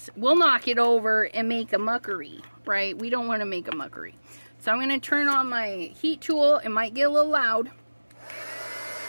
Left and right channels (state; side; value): inverted; both; correlation -1.00